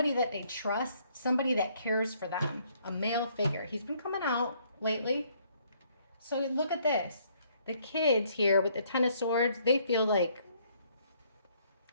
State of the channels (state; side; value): inverted; both; correlation -0.66